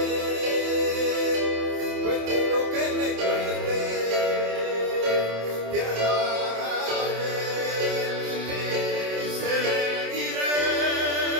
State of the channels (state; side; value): late; left; 27 ms